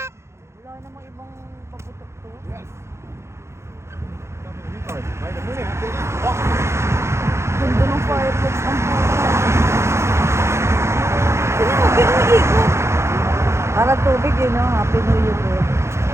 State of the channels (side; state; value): left; late; 0.13 ms